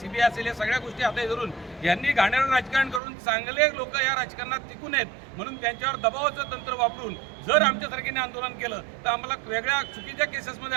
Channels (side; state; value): left; drops out; at 3.0 s